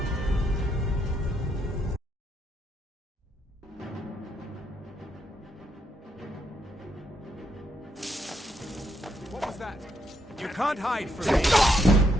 What was that? You can't hide from me.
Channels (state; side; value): normal; both; correlation 0.77